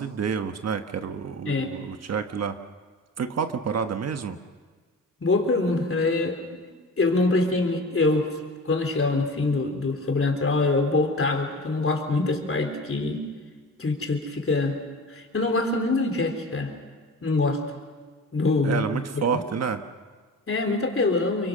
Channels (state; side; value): normal; both; correlation 0.35